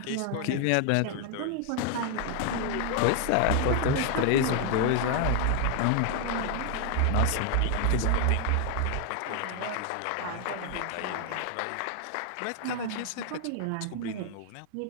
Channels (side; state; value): both; different; correlation 0.00